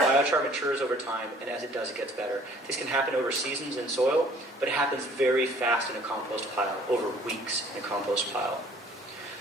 matures over time, and as it does, it gets better. This can happen over seasons in soil, but it happens very fast in a compost pile, over weeks in a compost pile.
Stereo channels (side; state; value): both; normal; correlation 0.55